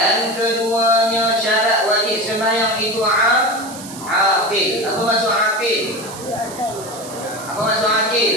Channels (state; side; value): noise; right; hiss, 14 dB below the sound